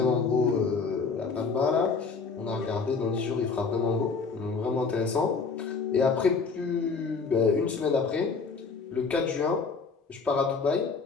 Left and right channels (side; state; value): right; quieter; 4.9 dB